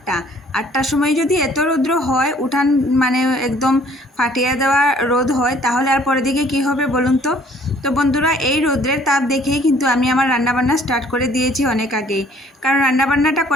8টার সময় যদি এত রৌদ্র হয়, উঠান মানে একদম ফাটিয়ে দেওয়া রোদ হয়, তাহলে আর পরের দিকে কী হবে বলুন তো। তো বন্ধুরা, এই রৌদ্রের তাপ দেখেই কিন্তু আমি আমার রান্নাবান্না স্টার্ট করে দিয়েছি অনেক আগেই। কারণ রান্নাবান্নাটা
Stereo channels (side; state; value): both; normal; correlation 0.58